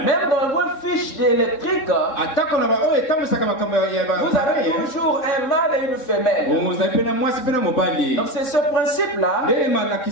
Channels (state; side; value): late; right; 3.7 ms